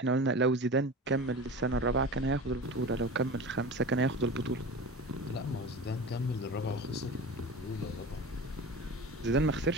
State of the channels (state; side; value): normal; both; correlation 0.32